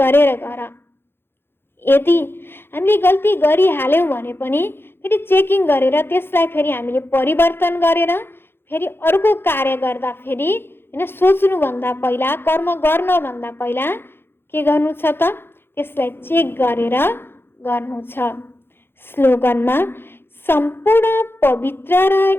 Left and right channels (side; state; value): right; late; 0.11 ms